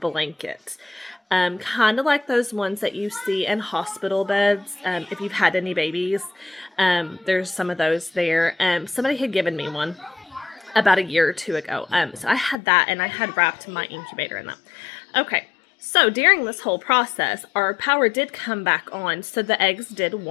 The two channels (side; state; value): right; drops out; at 12.6 s